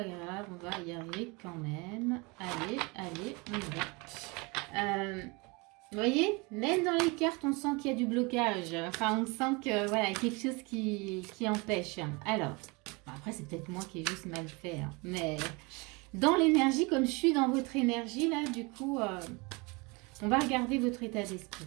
grave, on va y arriver quand même. Allez, allez, on y va. Vous voyez, même dans les cartes, on sent qu'il y a du blocage. Enfin, on sent que voilà, il y a quelque chose qui empêche. Alors, après, c'est peut-être moi qui ai juste mal fait, hein, mais dans l'énergie, comme je suis dans votre énergie, là, du coup, on va regarder votre état d'esprit.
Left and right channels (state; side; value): quieter; left; 27.6 dB